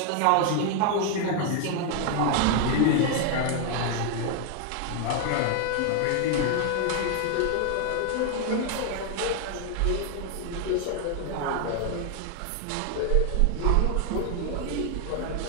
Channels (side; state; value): both; different; correlation 0.00